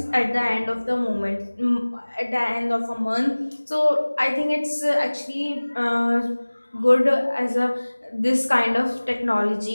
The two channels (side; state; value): both; inverted; correlation -1.00